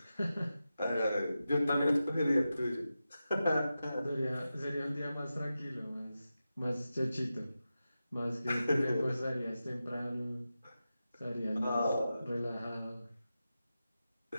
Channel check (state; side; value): inverted; both; correlation -0.92